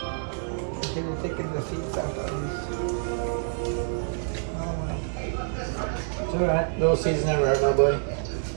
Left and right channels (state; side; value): silent; left; digital silence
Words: le taking the seeds out. It's all right. Little seeds never hurt nobody.